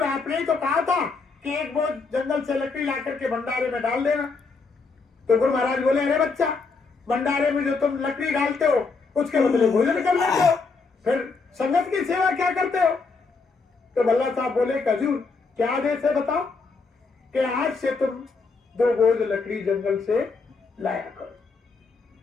आपने ही तो कहा था कि एक बोझ जंगल से लकड़ी ला करके भंडारे में डाल देना। तो गुरु महाराज बोले, अरे बच्चा, भंडारे में जो तुम लकड़ी डालते हो उसके बदले भोजन कर लेते हो, फिर संगत की सेवा क्या करते हो? तो भल्ला साहब बोले, हजूर क्या आदेश है बताओ? कि आज से तुम 2 बोझ लकड़ी जंगल से लाया करो,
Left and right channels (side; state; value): right; quieter; 4.3 dB